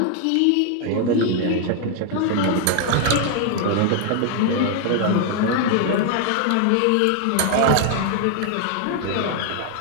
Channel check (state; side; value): different; both; correlation 0.00